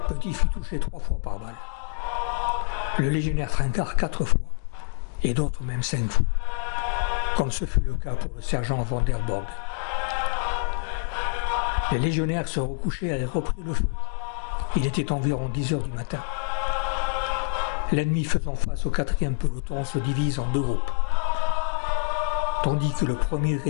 Petit fut touché 3 fois par balle. Le légionnaire Trincard 4 fois, et d'autres même 5 fois, comme ce fut le cas pour le sergent Van der Borg. Les légionnaires se recouchaient et avaient repris le feu. Il était environ 10 heures du matin. L'ennemi faisant face au 4e peloton se divise en deux groupes. Tandis que le premier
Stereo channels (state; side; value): silent; right; 61 dB below the other